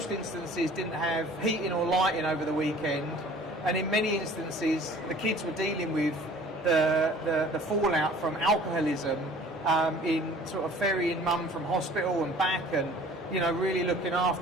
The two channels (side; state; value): both; normal; correlation 0.49